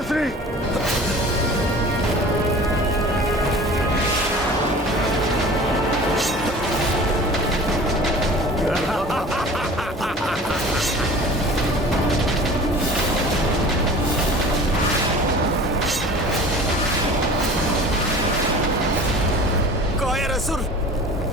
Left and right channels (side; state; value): both; normal; correlation 0.41